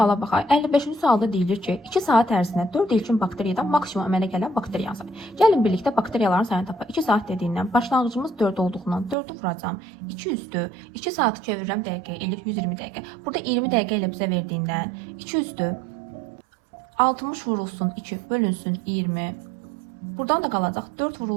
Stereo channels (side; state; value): left; drops out; at 9.2 s